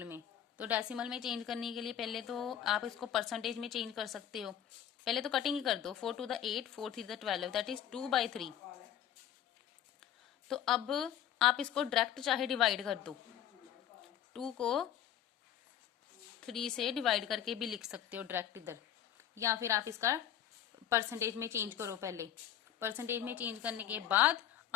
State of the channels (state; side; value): quieter; right; 10.4 dB